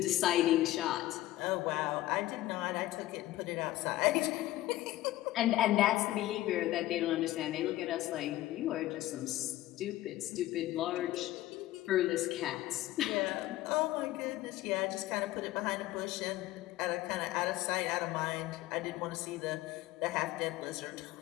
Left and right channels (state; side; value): quieter; right; 16.0 dB